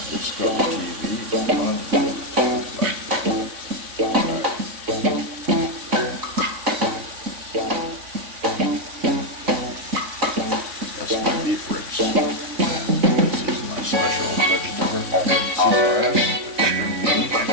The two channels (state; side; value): late; left; 3.5 ms